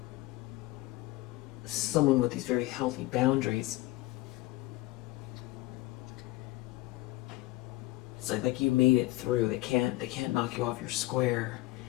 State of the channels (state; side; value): quieter; right; 18.6 dB